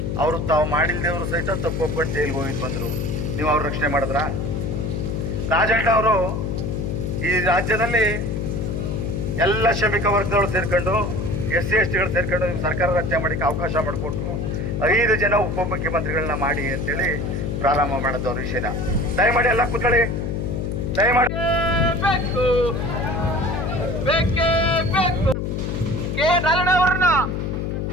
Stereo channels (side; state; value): left; noise; hum, 2 dB below the sound